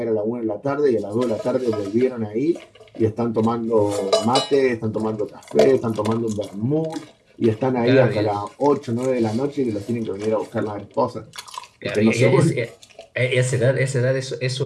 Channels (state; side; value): identical; both; correlation 1.00